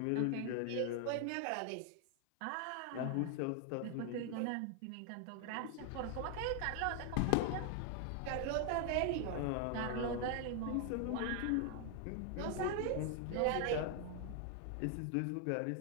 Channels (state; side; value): different; both; correlation 0.00